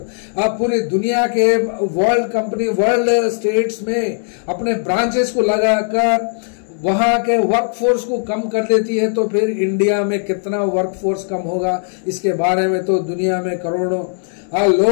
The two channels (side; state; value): right; silent; digital silence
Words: पूरी दुनिया के वर्ल्ड स्टेट्स में अपने ब्रांचेस को लगाकर वहां के वर्कफोर्स को कम कर देती है। तो फिर इंडिया में कितना वर्कफोर्स कम होगा, इसके बारे में तो दुनिया में करोड़ों